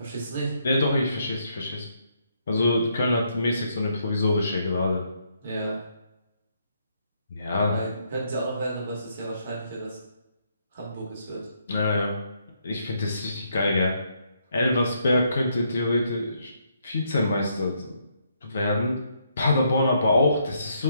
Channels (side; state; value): both; inverted; correlation -0.74